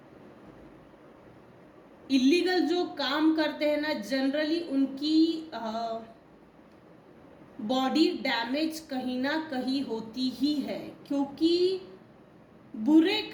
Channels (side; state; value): both; identical; correlation 1.00